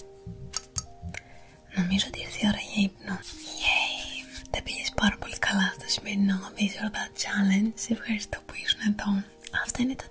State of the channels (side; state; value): both; identical; correlation 1.00